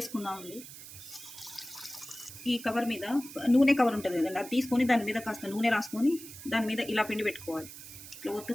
అండి. ఈ కవర్ మీద నూనె కవర్ ఉంటుంది కదండి, అది తీసుకొని దాని మీద కాస్త నూనె రాసుకొని దాని మీద ఇలా పిండి పెట్టుకోవాలి. ఇట్లా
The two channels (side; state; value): right; noise; hiss, 14 dB below the sound